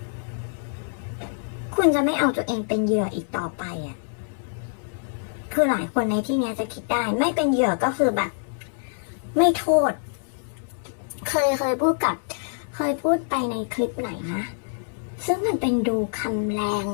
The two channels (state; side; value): silent; right; 61 dB below the other